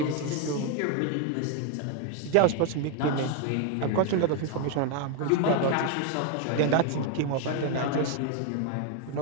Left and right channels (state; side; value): different; both; correlation 0.01